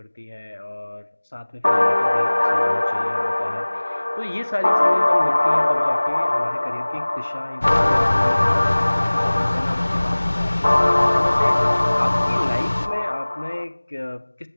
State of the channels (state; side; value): inverted; both; correlation -1.00